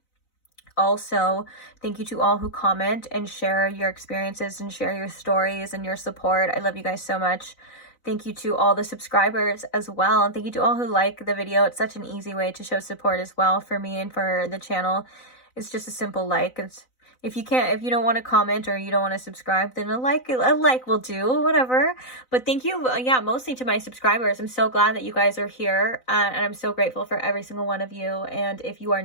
Also, thank you to all who comment and share your experiences and share your stories and your support. I love you guys so much. Thank you to all the subscribers as well. And thank you to all who like the video. It's such an easy way to show support as well for me and for the channel. It's just a simple like. If you don't want to comment or you don't want to subscribe, then a like will do, whatever. But thank you, mostly to my subscribers. I'm so glad that you guys are here, and I'm so grateful for every single one of you. And if you are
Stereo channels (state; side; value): late; right; 4.0 ms